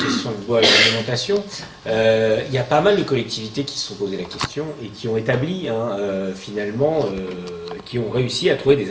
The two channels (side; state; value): both; identical; correlation 1.00